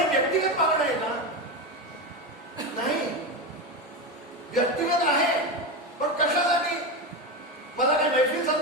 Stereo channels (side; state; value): both; normal; correlation 0.17